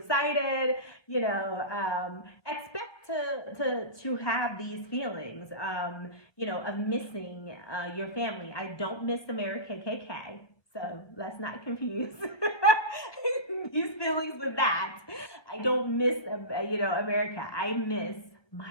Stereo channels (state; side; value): late; right; 1.2 ms